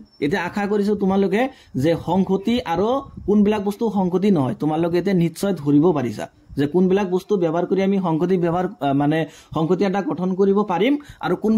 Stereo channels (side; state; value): both; identical; correlation 1.00